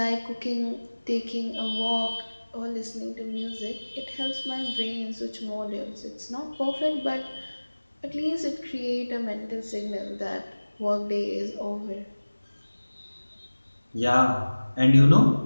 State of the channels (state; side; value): inverted; both; correlation -1.00